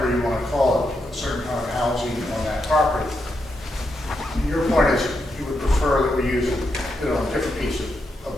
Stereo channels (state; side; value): normal; both; correlation 0.83